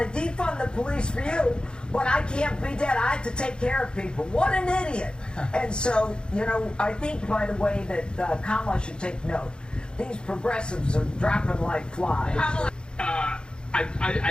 to defund the police for you, but I can't be dead. I have to take care of people. What an idiot. And so, I think, by the way, that Kamala should take note. These progressives are dropping like flies.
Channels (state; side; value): late; right; 0.050 ms